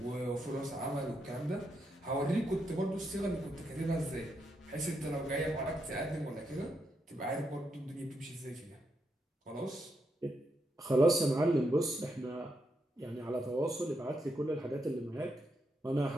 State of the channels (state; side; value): normal; both; correlation 0.81